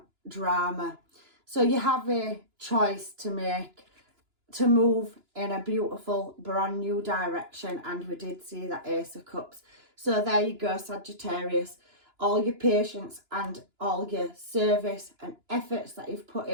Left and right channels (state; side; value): late; left; 2.9 ms